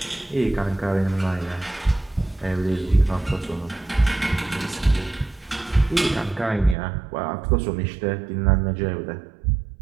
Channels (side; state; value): left; drops out; at 6.8 s